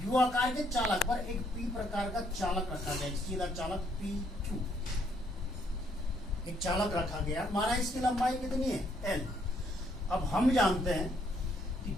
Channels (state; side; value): normal; both; correlation 0.69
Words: यू आकार के चालक पर एक P प्रकार का चालक रखा गया, सीधा चालक PQ, एक चालक रखा गया। माना इसकी लंबाई कितनी है, L। अब हम जानते हैं कि